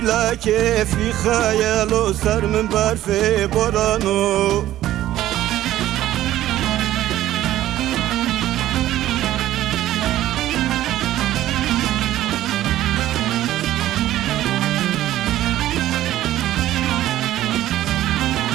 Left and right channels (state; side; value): quieter; left; 13.8 dB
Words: لکفی خیالو سر من برفی بارانو